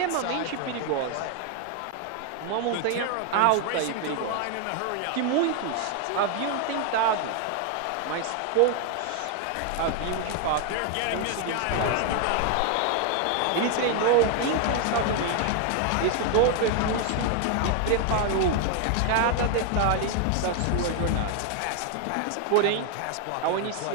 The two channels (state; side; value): different; both; correlation 0.01